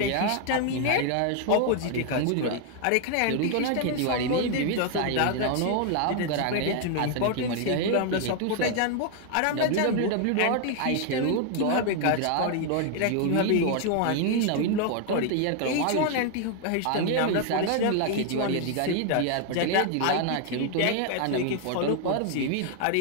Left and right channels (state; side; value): different; both; correlation 0.00